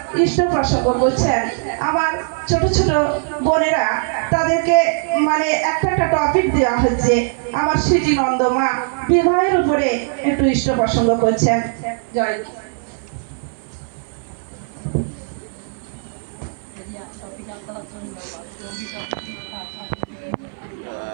ইষ্ট প্রসঙ্গ করছেন আমার ছোট ছোট বোনেরা, তাদেরকে মানে একটা একটা টপিক দেওয়া হচ্ছে। আমার স্মৃতি নন্দ মা বিবাহের উপরে একটু ইষ্ট প্রসঙ্গ করছেন। জয় গুরু।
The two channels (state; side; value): silent; left; 58 dB below the other